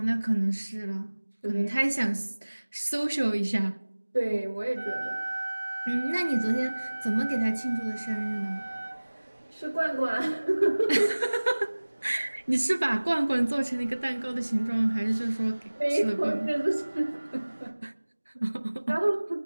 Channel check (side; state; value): both; inverted; correlation -1.00